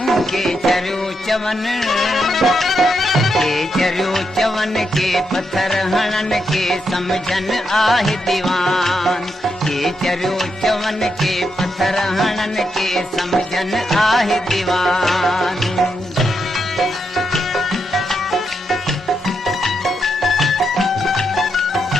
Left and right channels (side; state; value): both; normal; correlation 0.82